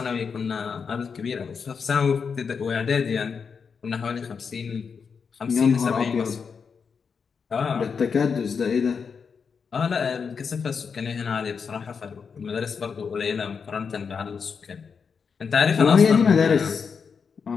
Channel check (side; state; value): right; quieter; 5.9 dB